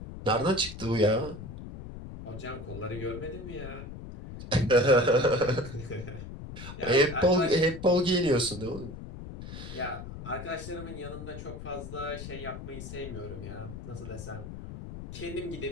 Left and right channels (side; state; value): left; noise; rumble, 11 dB below the sound